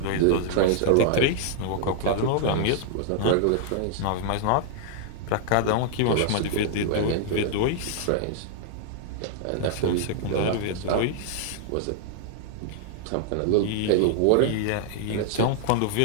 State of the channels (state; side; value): different; both; correlation -0.01